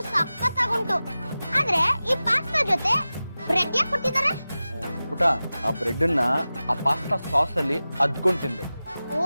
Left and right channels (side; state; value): both; inverted; correlation -0.96